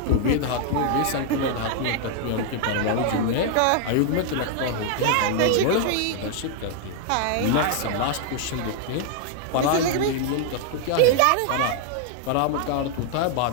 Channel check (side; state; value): both; different; correlation 0.00